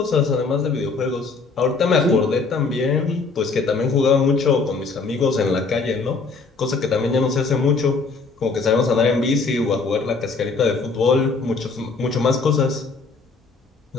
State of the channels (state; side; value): quieter; right; 4.3 dB